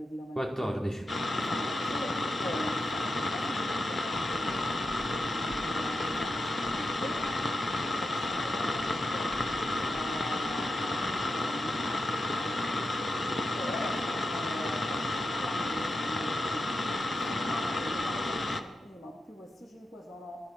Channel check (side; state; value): both; normal; correlation 0.88